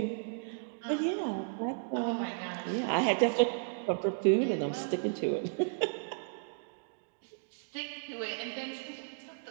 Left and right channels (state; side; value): silent; left; digital silence